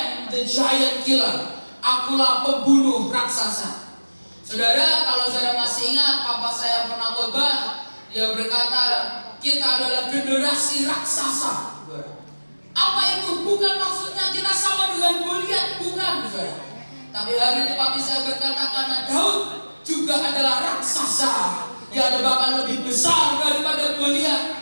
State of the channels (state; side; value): inverted; both; correlation -1.00